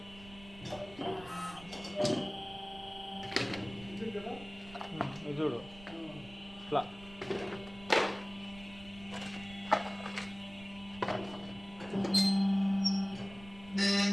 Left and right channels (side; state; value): right; noise; rumble, 19 dB below the sound